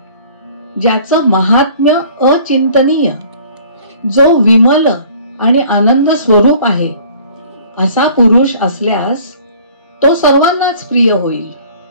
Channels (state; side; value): inverted; both; correlation -0.52